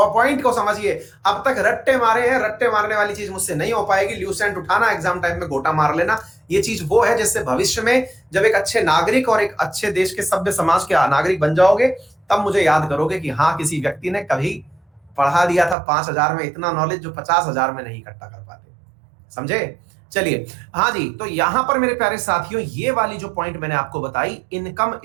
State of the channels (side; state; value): left; drops out; at 15.8 s